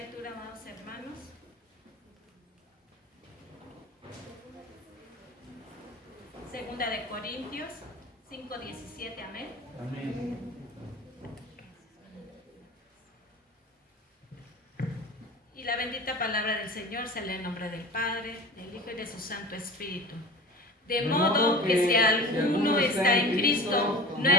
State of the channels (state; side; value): normal; both; correlation 0.36